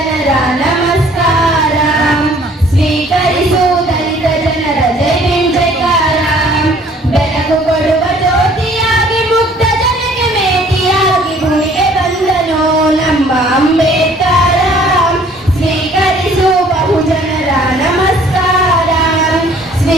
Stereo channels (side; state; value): both; normal; correlation 0.56